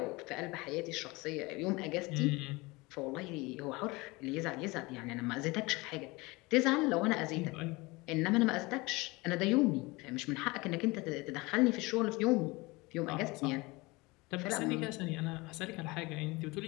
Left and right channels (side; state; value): right; quieter; 23.6 dB